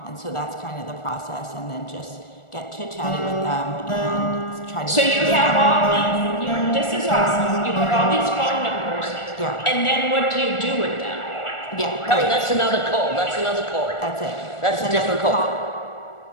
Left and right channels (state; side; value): late; right; 1.4 ms